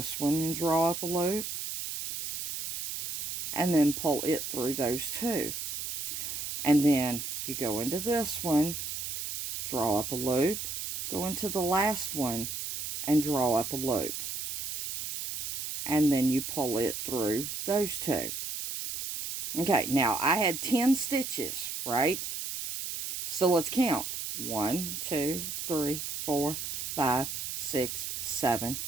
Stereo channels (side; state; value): right; noise; hiss, 5 dB below the sound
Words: one and draw up a loop, and then pull it through those two. And then you go into this one, draw up a loop, go into the last one and draw up a loop. And then you pull it through those two. Okay, now I had 10 stitches, right? So let's count. 1, 2, 3, 4, 5, 6, 7,